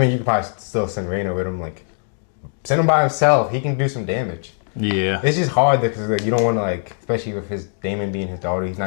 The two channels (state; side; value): silent; right; digital silence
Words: you could probably still send Reyna with him. Like send him by himself. He can do some damage. Yeah. It's just hard because like you don't want to like, especially with his Damon being his daughter, he's